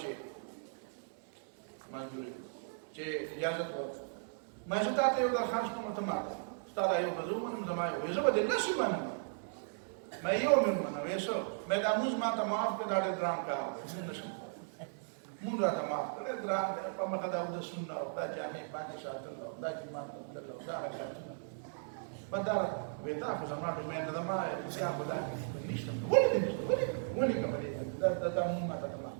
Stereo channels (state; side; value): silent; left; digital silence